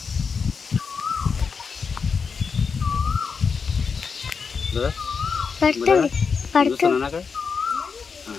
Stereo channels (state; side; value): quieter; right; 5.5 dB